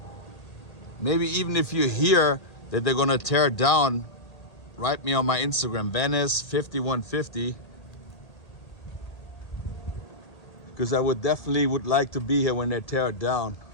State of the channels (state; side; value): late; right; 1.8 ms